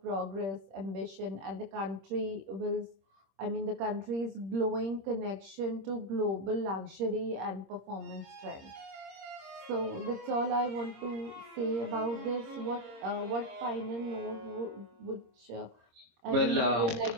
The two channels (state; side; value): late; left; 26 ms